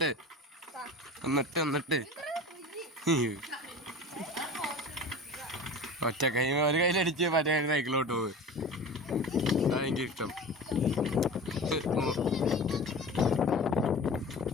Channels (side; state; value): both; normal; correlation 0.35